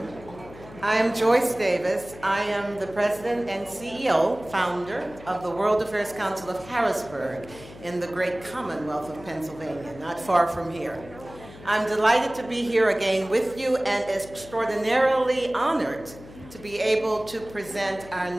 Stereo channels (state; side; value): noise; left; hum, 18 dB below the sound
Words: I am Joyce Davis. I am the President and CEO, founder of the World Affairs Council of Harrisburg in the great Commonwealth of Pennsylvania, not far from here. I'm delighted to be here again with you and extraordinarily honored to be able to present our